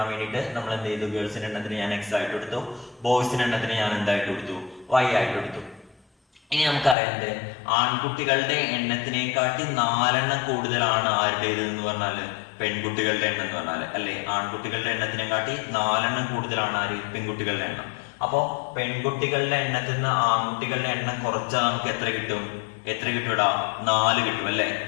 വേണ്ടിയിട്ട് നമ്മൾ എന്ത് ചെയ്തു? ഗേൾസിന്റെ എണ്ണത്തിന് ഞാൻ x ആയിട്ട് കൊടുത്തു, ബോയ്സിന്റെ എണ്ണത്തിന് ഞാൻ എന്തായിട്ട് കൊടുത്തു? y ആയിട്ട് കൊടുത്തു. ഇനി നമുക്കറിയാം, ആൺകുട്ടികളുടെ എണ്ണത്തിനെക്കാട്ടി 4 എണ്ണം കൂടുതലാണ് ആരുടേത് എന്ന് പറഞ്ഞാല് പെൺകുട്ടികളുടെ എണ്ണം എന്ന് പറഞ്ഞാല്, അല്ലെ? ആൺകുട്ടികളുടെ എണ്ണത്തിനെക്കാട്ടി 4 എണ്ണം കൂടുതലാണ് ആര്? പെൺകുട്ടികളുടെ എണ്ണം. അപ്പോ പെൺകുട്ടികളുടെ എണ്ണത്തിൽ നിന്ന് ആൺകുട്ടികളുടെ എണ്ണം കുറച്ചാൽ നമുക്ക് എത്ര കിട്ടും? എത്ര കിട്ടൂടാ? 4 കിട്ടും, അല്ലെ?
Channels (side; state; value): right; drops out; at 7.0 s